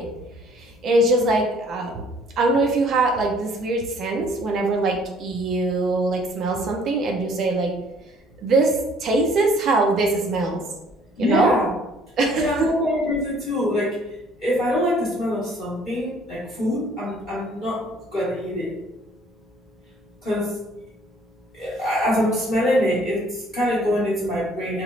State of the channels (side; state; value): both; normal; correlation 0.58